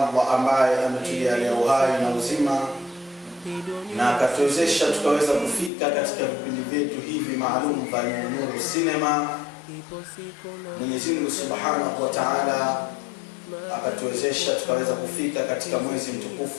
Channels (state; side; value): drops out; right; at 5.7 s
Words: ambaye ametujalia uhai na uzima na akatuwezesha tukaweza kufika katika vipindi vyetu hivi maalum vya Nuru Cinema. Mwenyezi Mungu Subhanahu wa Ta'ala akatuwezesha tukaweza kufika katika mwezi